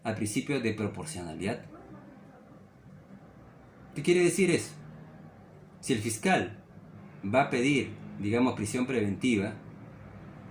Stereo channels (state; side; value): identical; both; correlation 1.00